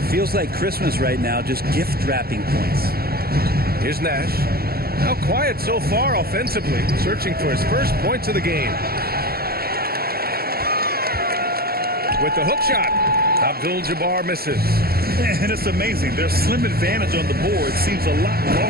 feels like Christmas right now, just gift wrapping points. Here's Nash. How quiet so far offensively, searching for his first points of the game. With the hook shot, Abdul-Jabbar misses. And it's amazing. Their slim advantage on the board seems a lot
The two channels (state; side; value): late; left; 0.44 ms